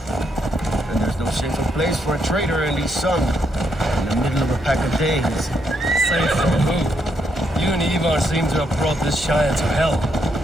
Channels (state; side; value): normal; both; correlation 0.77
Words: there's no safer place for a traitor and his son in the middle of a pack of Danes. Safe from who? You and Ivar seem to have brought this Shire to hell.